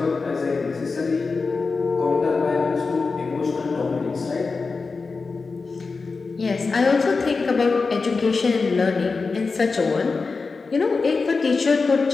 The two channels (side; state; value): right; quieter; 4.3 dB